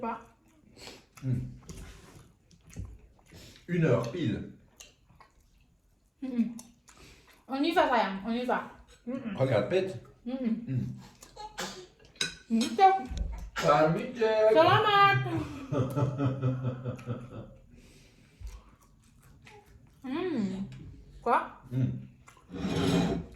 1h pile. On y va sayang, on y va. Regarde, pète. Salut, Jack. Selamat. Quoi?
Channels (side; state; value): both; identical; correlation 1.00